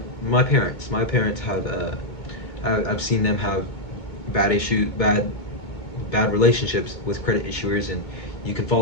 my parents. My parents have I've seen them have bad relationships with credit issuers, and you can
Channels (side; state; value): right; late; 2.2 ms